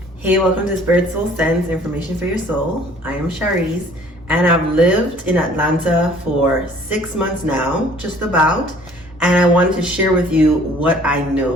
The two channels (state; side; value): normal; both; correlation 0.54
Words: Hey, welcome to Spirit Soul Sense, Information for Your Soul. I am Shareece, and I've lived in Atlanta for 6 months now, just about, and I wanted to share with you what I